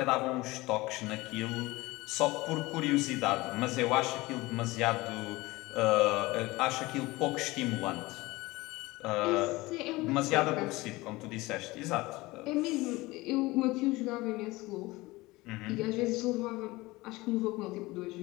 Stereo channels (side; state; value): right; quieter; 20.8 dB